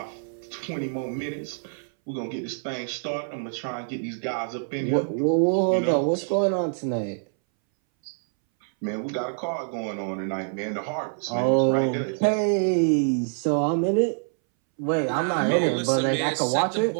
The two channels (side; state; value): left; silent; 61 dB below the other